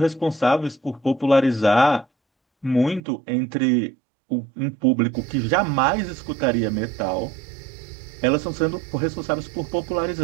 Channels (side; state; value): left; drops out; at 3.0 s